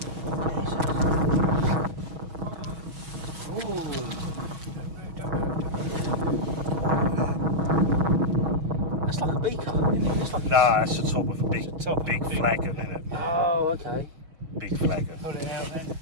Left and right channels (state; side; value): late; left; 6.2 ms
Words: That's like a beaker. No, that's the top of a big flagon, isn't it? Oh, okay. Big flagon. Pull it out then.